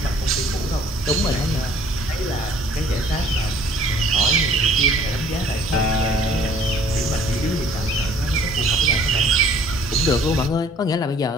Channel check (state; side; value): normal; both; correlation 0.56